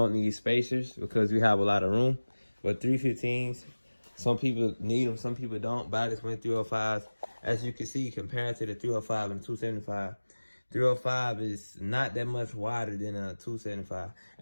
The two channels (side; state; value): both; inverted; correlation -1.00